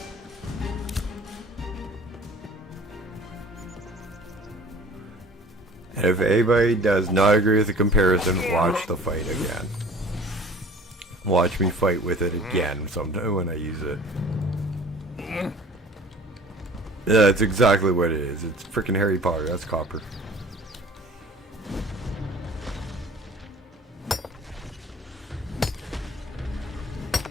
And if anybody does not agree with the comparison, watch the fight again. Watch me fight with it again sometime when I use it. Yeah, that's exactly what it is. It's freaking Harry Potter. That's copper.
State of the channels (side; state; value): both; normal; correlation 0.47